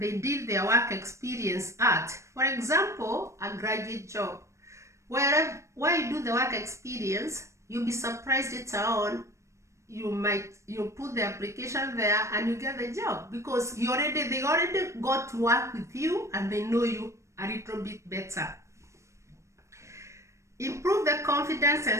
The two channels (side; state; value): left; late; 0.14 ms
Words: did their work experience at. For example, a graduate job. Where you do the work experience, you'll be surprised later on, you put the application there and you get the job, because they already got to work with you and they know you a little bit better. Improve the confidence